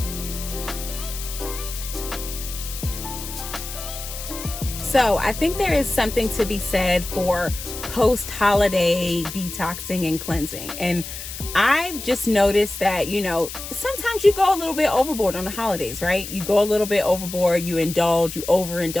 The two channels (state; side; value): noise; left; hiss, 9 dB below the sound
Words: So I think there is something to be said for post-holiday detoxing and cleansing. And I've just noticed that, sometimes you go a little bit overboard on the holidays, right? You go a little bit overboard, you indulge, you